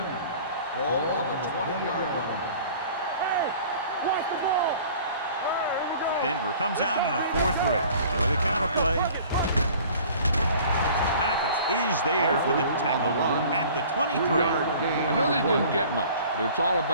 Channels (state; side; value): inverted; both; correlation -0.48